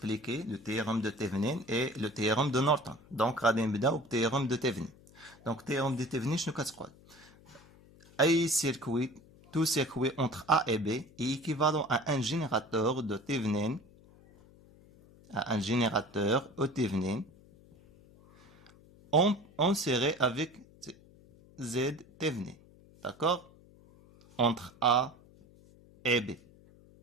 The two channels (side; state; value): left; noise; hum, 25 dB below the sound